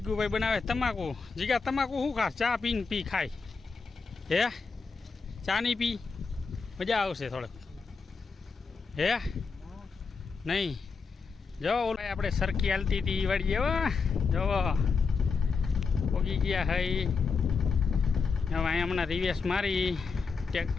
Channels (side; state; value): right; quieter; 5.0 dB